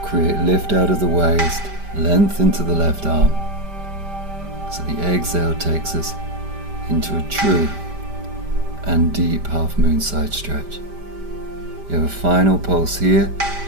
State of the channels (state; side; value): late; left; 5.1 ms